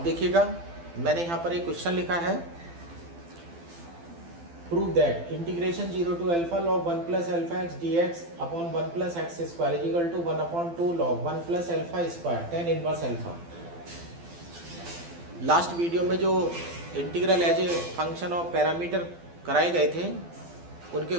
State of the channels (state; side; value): late; left; 12 ms